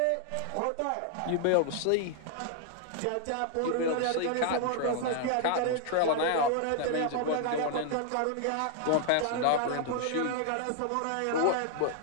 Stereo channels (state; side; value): different; both; correlation 0.00